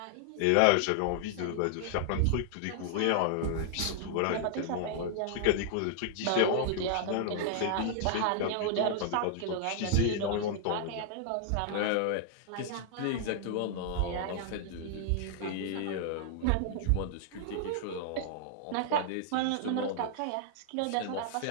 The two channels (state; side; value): different; both; correlation -0.01